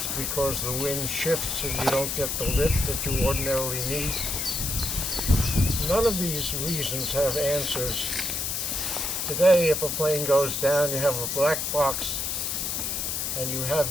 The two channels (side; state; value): left; noise; hiss, 1 dB below the sound